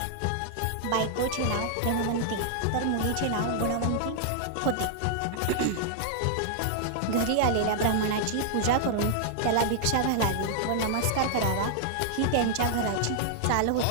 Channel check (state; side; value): different; both; correlation -0.01